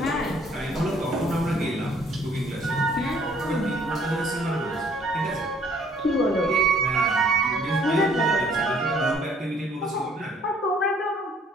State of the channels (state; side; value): normal; both; correlation 0.60